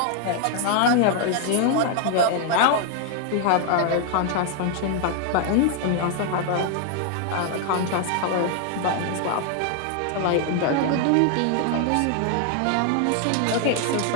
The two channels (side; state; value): both; different; correlation 0.00